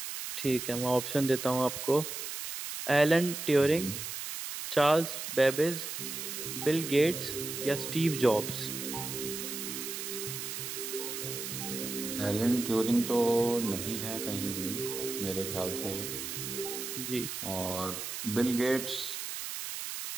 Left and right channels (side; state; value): right; noise; hiss, 6 dB below the sound